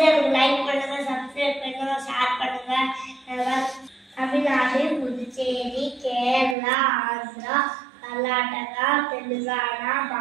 லைக் பண்ணுங்க, சப்ஸ்கிரைப் பண்ணுங்க, ஷேர் பண்ணுங்க. தமிழ்நாடு, புதுச்சேரி, கேரளா, ஆந்திரா, கர்நாடகா, தெலுங்கானா,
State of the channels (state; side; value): drops out; left; at 6.6 s